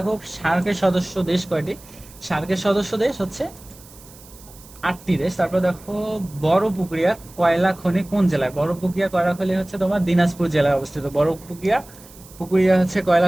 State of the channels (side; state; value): right; noise; hiss, 22 dB below the sound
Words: সার্কের সদস্য দেশ কয়টি? সার্কের সদস্য দেশ হচ্ছে 8টি দেশ। তারপর দেখো বড়পুকুরিয়া কয়লা খনি কোন জেলায়? বড়পুকুরিয়া কয়লা খনি হচ্ছে তোমার দিনাজপুর জেলায় অবস্থিত। পুকুরিয়া হচ্ছে